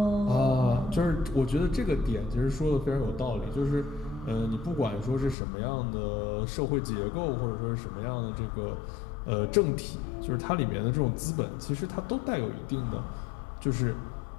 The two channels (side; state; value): right; drops out; at 5.4 s